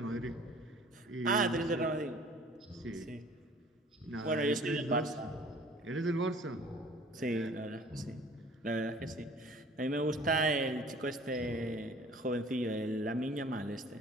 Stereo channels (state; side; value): normal; both; correlation 0.50